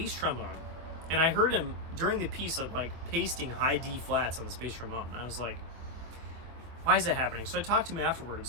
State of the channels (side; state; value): left; late; 24 ms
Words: trombone. And I heard him during the piece of like pasting high D flats on this bass trombone. And I was like, why is that happening? So I talked to him